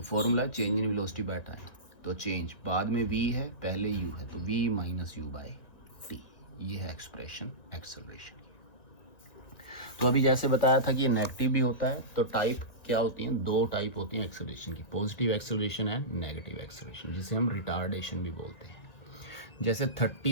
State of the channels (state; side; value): late; right; 1.7 ms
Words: formula change in velocity by time. तो चेंज बाद में v है, पहले u है, तो v minus you by T. ये है एक्सप्रेशन एक्सेलरेशन। तो अभी जैसे बताया था कि नेगेटिव भी होता है, तो टाइप क्या होती हैं? 2 टाइप होती हैं एक्सेलरेशन की, positive acceleration and negative acceleration, जिसे हम रिटार्डेशन भी बोलते हैं। जैसे